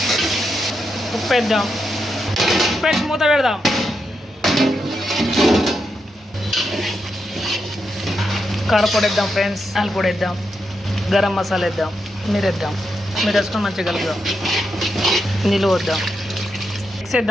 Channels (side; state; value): both; normal; correlation 0.84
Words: ఉప్పు వేద్దాం, ఉప్పు వేసి మూత పెడదాం. కారపొడి వేద్దాం. ఫ్రెండ్స్, పొడి వేద్దాం, గరం మసాలా వేద్దాం, మీరు వేద్దాం. మీరు వేసుకొని మంచిగా కలుపుదాం. నీళ్ళు వద్దాం, మిక్స్